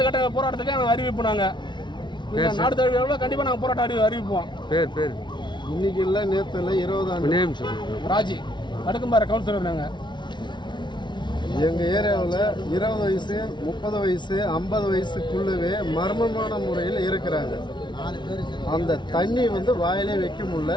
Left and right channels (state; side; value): late; right; 0.22 ms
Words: கட்ட போராட்டத்துக்கு நாங்கள் அறிவிப்போம். நாங்கள் நாடு தழுவிய கண்டிப்பாக நாங்கள் போராட்டம் அறிவிப்போம். இன்னைக்கு இல்லை, நேற்று இல்லை, 20 ஆண்டு ராஜி அடுக்கும்பாறை கவுன்சிலர். நாங்கள் எங்கள் ஏரியாவில் 20 வயசு 30 வயசு 50 வயசுக்குள்ளவே மர்மமான முறையில் இருக்கிறாங்க. அந்த தண்ணி வந்து வாயிலே வைக்க முடியல,